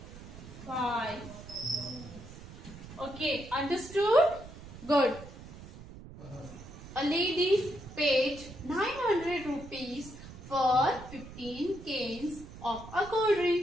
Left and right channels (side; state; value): right; noise; rumble, 15 dB below the sound